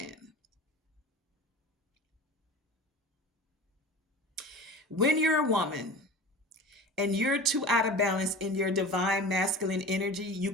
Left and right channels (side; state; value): both; normal; correlation 0.36